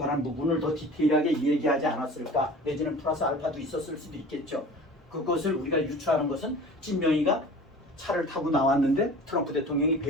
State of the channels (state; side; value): normal; both; correlation 0.40